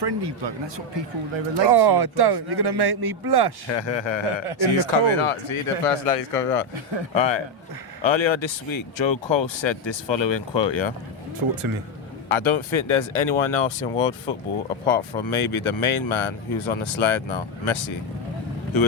bloke, and that's what people they relate to. Oh, don't! You're gonna make me blush. He's coming out. See, the personality's coming out. All right. Earlier this week, Joe Cole said this following quote. Yeah. Talk to me. I don't think there's anyone else in world football apart from maybe the main man who's on the slide now, Messi, who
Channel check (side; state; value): both; normal; correlation 0.06